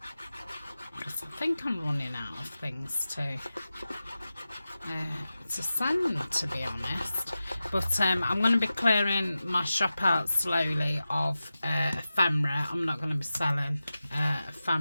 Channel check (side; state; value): both; inverted; correlation -0.94